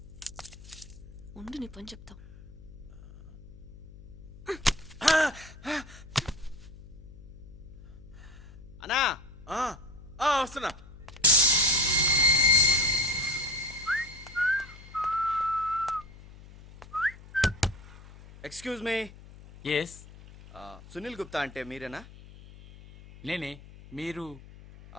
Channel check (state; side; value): noise; left; hum, 18 dB below the sound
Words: ఉండు నీ పని చెప్తా. అన్నా వస్తున్నా. Excuse me, yes, Sunil Gupta అంటే మీరేనా? నేనే. మీరు?